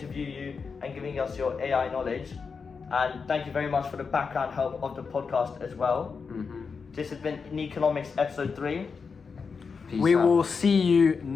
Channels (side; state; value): right; quieter; 5.3 dB